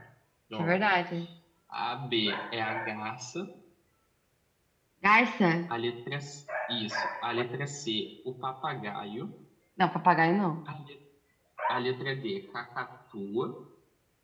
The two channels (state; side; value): identical; both; correlation 1.00